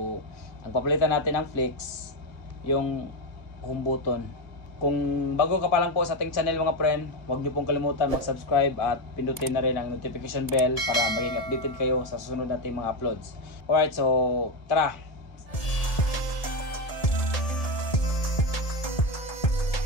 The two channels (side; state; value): right; late; 1.7 ms